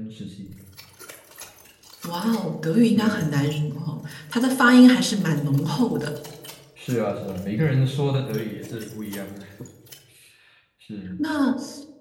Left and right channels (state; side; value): identical; both; correlation 1.00